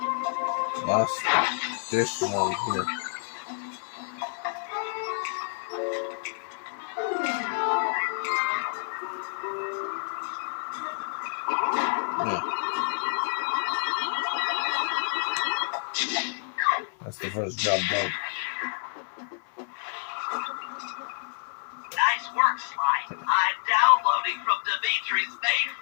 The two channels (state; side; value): silent; right; digital silence